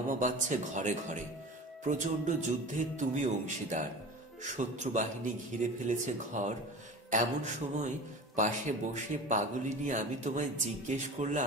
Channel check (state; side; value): normal; both; correlation 0.35